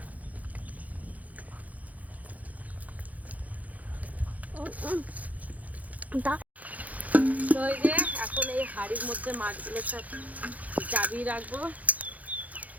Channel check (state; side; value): late; left; 0.075 ms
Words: তো এই যে এখন এই হাড়ির মধ্যে মাছগুলো সব চাবিয়ে রাখবো।